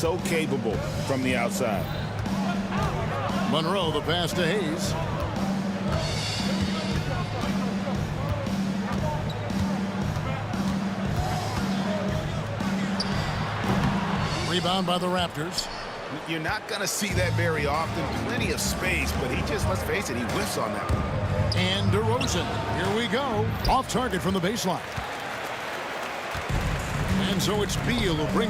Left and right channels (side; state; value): both; identical; correlation 1.00